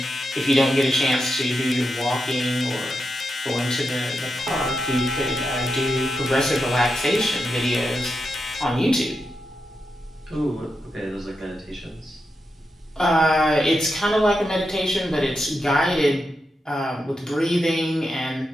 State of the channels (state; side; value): normal; both; correlation 0.87